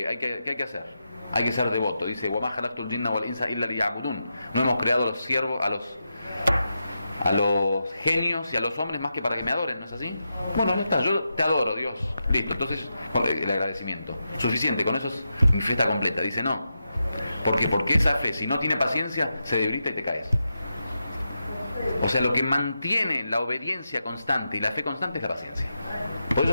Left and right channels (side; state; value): both; inverted; correlation -0.87